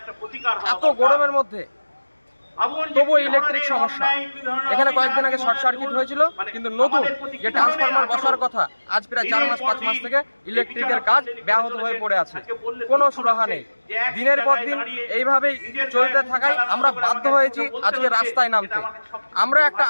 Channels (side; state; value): both; inverted; correlation -1.00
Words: এত গরমের মধ্যে তবু ইলেকট্রিক সমস্যা। এখানে কয়েকদিন আগে শর্ট সার্কিট হয়েছিল, কিন্তু নতুন যে ট্রান্সফরমার বসার কথা, আজ প্রায় 4-5 মাস থেকে ইলেকট্রিকের কাজ ব্যাহত হয়ে পড়ে আছে, কোনো সুরাহা নেই। দিনের পর দিন এইভাবেই চলতে থাকায় আমরা বাধ্য হয়েছি আজকে রাস্তায় নামতে। আমরা একটা